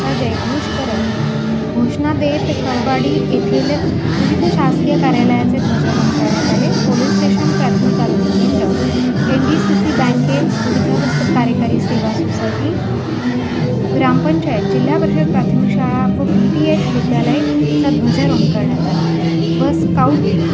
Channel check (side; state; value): both; identical; correlation 1.00